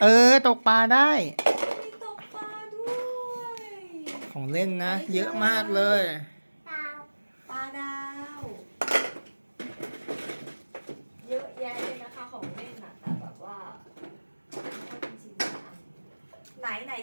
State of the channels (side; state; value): both; inverted; correlation -1.00